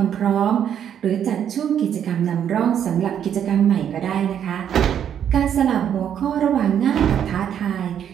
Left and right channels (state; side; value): quieter; left; 9.2 dB